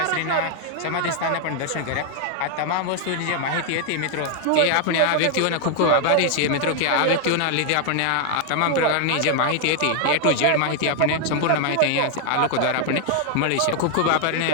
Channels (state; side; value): different; both; correlation 0.00